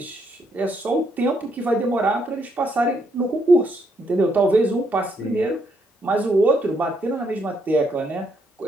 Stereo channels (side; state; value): both; normal; correlation 0.75